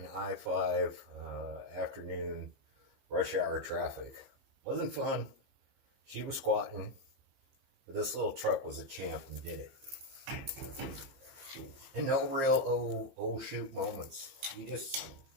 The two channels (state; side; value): late; left; 15 ms